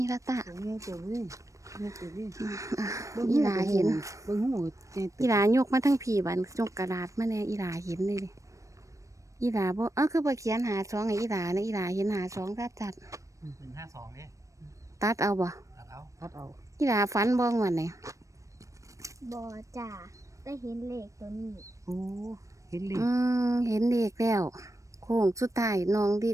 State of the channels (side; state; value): left; late; 0.15 ms